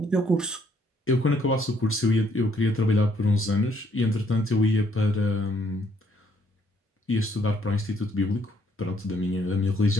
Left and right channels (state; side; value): normal; both; correlation 0.68